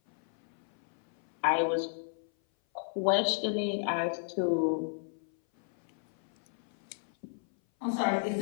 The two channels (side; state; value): right; silent; 56 dB below the other